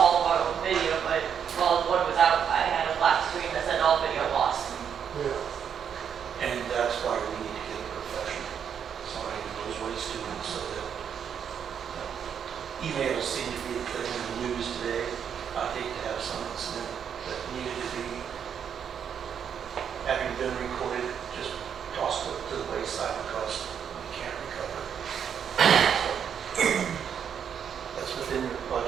of our old video, but while the board was out, I had a black screen that said all video lost. Yeah. And that's why we need to get a professional, somebody who knows what he's doing, so that emails seem to be the thing in the news today. I'd hate to have some incident that needed to be, having been recorded, just tossed to the wayside because we can't recover. So, that's within your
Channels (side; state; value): left; quieter; 7.9 dB